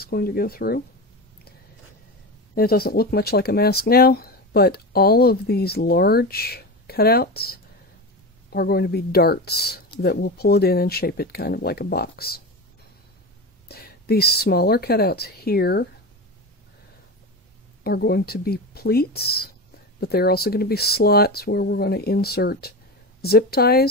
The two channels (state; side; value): normal; both; correlation 0.23